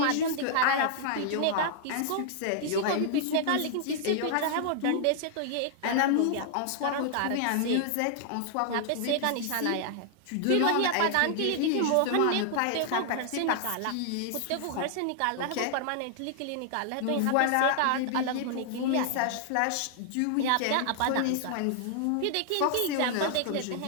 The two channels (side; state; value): both; different; correlation -0.01